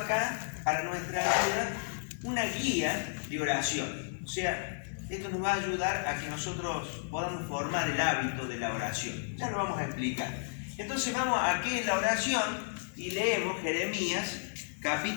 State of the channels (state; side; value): silent; right; digital silence